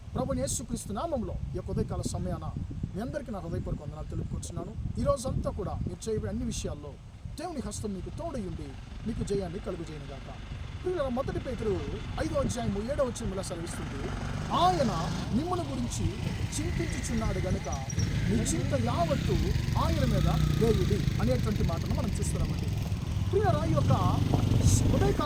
ప్రభువైన యేసుక్రీస్తు నామములో ఈ యొక్క ఉదయకాల సమయాన మీ అందరికీ నా హృదయపూర్వక వందనాలు తెలుపుకుంటున్నాను. ఈరోజంతా కూడా మీరు చేయబోయే అన్ని విషయాల్లో దేవుని హస్తం మీకు తోడయుండి మీకు జయాన్ని కలుగజేయనుగాక. ప్రియులారా, 1 పేతురు 5:7 సెలవిస్తుంది, ఆయన మిమ్మల్ని గురించి చింతించుచున్నాడు గనుక మీ చింత యావత్తు ఆయన మీద వేయుడి అనేటువంటి మాటను మనం చూస్తున్నామండి. ప్రియులారా, ఈ యొక్క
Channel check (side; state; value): both; identical; correlation 1.00